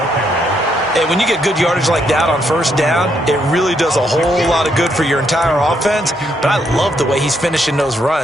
And when you get good yardage like that on first down, it really does a whole lot of good for your entire offense. But I love the way he's finishing those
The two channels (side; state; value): both; normal; correlation 0.75